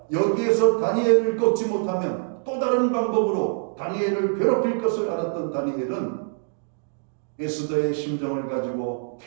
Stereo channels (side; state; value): left; silent; digital silence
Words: 여기에서 다니엘을 꺾지 못하면 또 다른 방법으로 다니엘을 괴롭힐 것을 알았던 다니엘은 에스더의 심정을 가지고